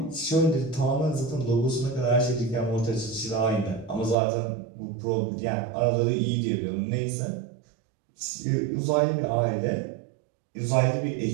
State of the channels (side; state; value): left; drops out; at 4.2 s